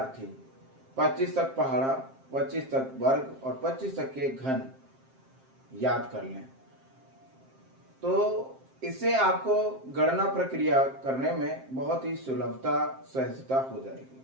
25 तक पहाड़ा, 25 तक वर्ग और 25 तक के घन याद कर लें। तो इससे आपको गणना प्रक्रिया करने में बहुत ही सुलभता, सहजता हो जाएगी।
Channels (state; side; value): late; left; 7.6 ms